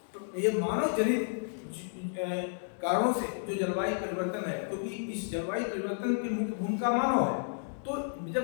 तो ये मानव जनित कारणों से जो जलवायु परिवर्तन है, क्योंकि इस जलवायु परिवर्तन की मुख्य भूमिका मानव है, तो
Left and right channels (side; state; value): right; silent; digital silence